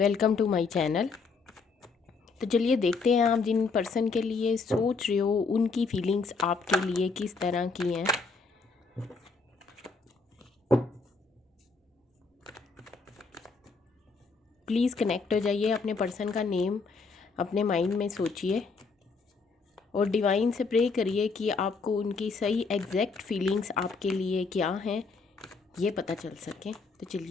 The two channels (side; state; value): right; quieter; 4.5 dB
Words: to my channel. तो चलिए देखते हैं आप जिन पर्सन के लिए सोच रहे हो उनकी फीलिंग्स आपके लिए किस तरह की हैं। प्लीज़ कनेक्ट हो जाइए, अपने पर्सन का नेम अपने माइंड में सोचिए और डिवाइन से प्रे करिए कि आपको उनकी सही एग्जैक्ट फीलिंग्स आपके लिए क्या हैं ये पता चल सके। तो